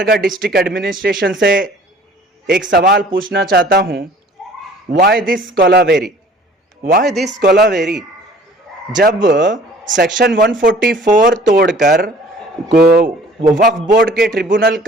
डिस्ट्रिक्ट एडमिनिस्ट्रेशन से एक सवाल पूछना चाहता हूं। Why this Kolaveri? Why this Kolaveri? जब सेक्शन 144 तोड़कर वक्फ बोर्ड के ट्रिब्यूनल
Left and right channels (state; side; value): normal; both; correlation 0.51